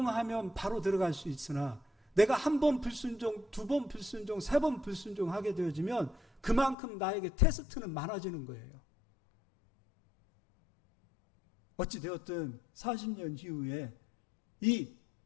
바로 들어갈 수 있으나 내가 한 번 불순종, 두 번 불순종, 세 번 불순종하게 되어지면 그만큼 나에게 테스트는 많아지는 거예요. 어찌되었든 40년 이후에 이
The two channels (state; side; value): drops out; right; at 6.8 s